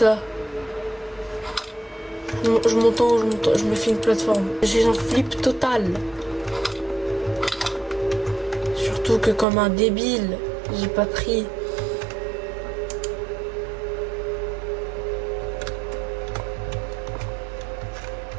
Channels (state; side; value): drops out; left; at 9.5 s